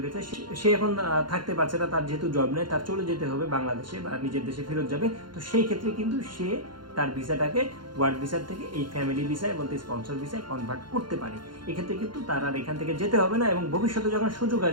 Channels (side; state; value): left; late; 0.72 ms